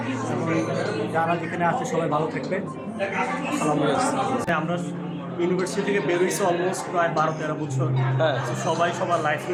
এবং যারা যেখানে আছে সবাই ভালো থাকবে। আসসালামু আলাইকুম। আমরা ইউনিভার্সিটি থেকে বেরোইছি অলমোস্ট প্রায় 12-13 বছর। তো সবাই সবার লাইফ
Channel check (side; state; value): both; identical; correlation 1.00